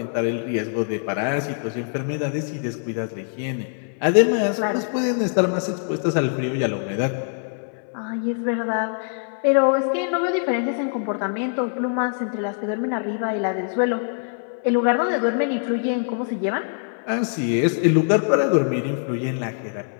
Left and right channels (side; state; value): right; silent; 61 dB below the other